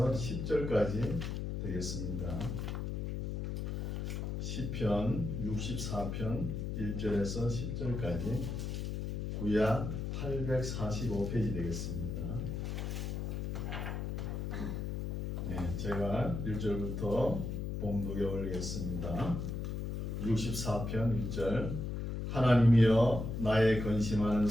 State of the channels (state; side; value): noise; left; hum, 3 dB below the sound